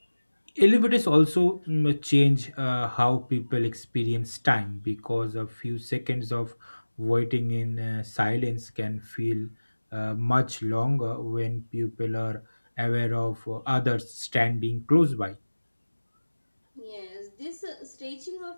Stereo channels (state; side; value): inverted; both; correlation -1.00